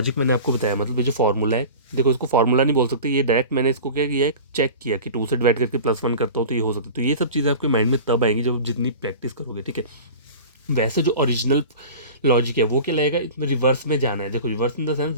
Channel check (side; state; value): both; inverted; correlation -0.36